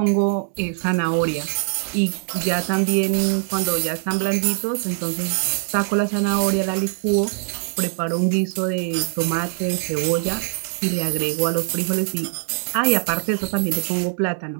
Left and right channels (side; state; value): left; silent; digital silence